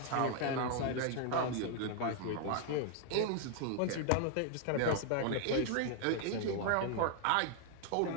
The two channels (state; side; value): different; both; correlation 0.00